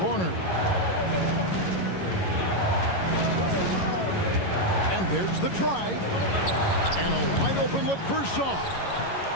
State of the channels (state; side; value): late; right; 11 ms